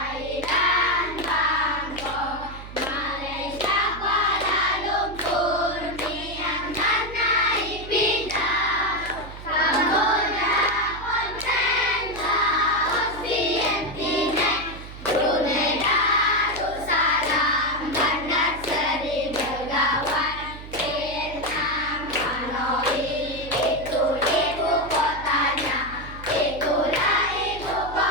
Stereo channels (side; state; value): right; noise; hum, 13 dB below the sound